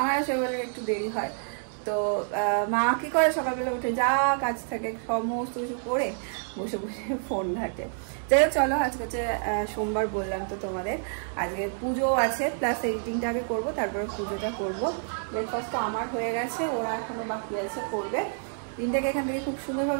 সকালবেলা একটু দেরি হয়। তো মা কি করে, সকালবেলা উঠে যা কাজ থাকে সমস্ত কিছু করে বসে বসে ফোন ঘাটে। যাই হোক, চলো, আজকে হচ্ছে সোমবার, বললাম তো তোমাদের। আজকে পুজো আছে, প্লাস এডিটিংটা আগে করবো, তারপরে পুজোটা করবো। ব্রেকফাস্ট তো আমার হয়ে গেছে, ওরা এখনো বাকি আছে, করবে। দিনটাকে এখান থেকে খুব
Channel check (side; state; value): left; silent; digital silence